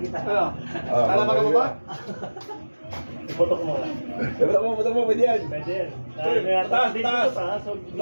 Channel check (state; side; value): inverted; both; correlation -1.00